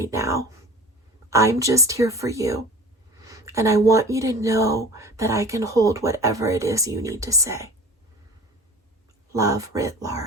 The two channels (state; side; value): normal; both; correlation 0.40